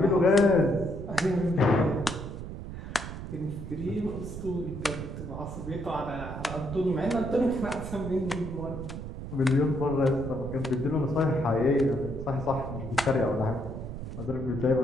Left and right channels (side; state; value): right; noise; rumble, 8 dB below the sound